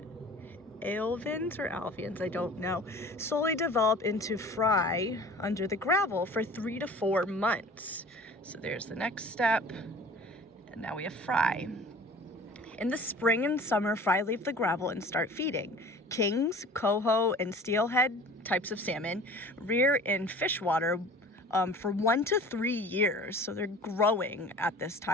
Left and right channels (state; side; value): normal; both; correlation 0.44